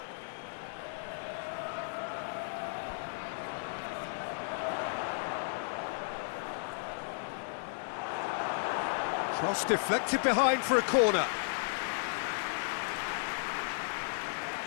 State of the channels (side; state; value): right; silent; digital silence